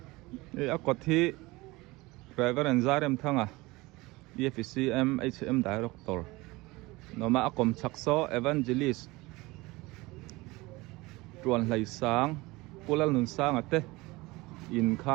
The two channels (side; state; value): left; quieter; 21.8 dB